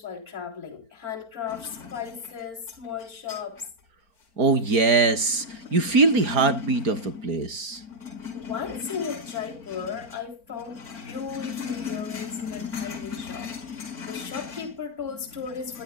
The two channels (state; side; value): late; left; 4.4 ms